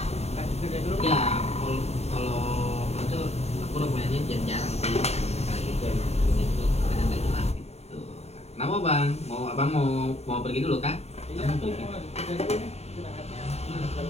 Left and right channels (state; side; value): late; right; 0.31 ms